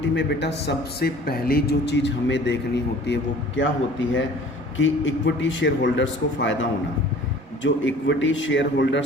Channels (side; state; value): both; normal; correlation 0.48